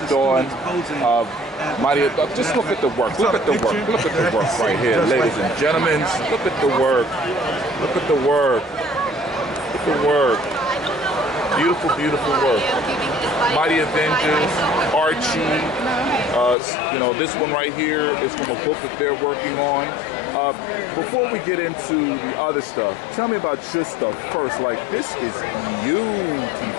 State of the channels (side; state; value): right; drops out; at 16.6 s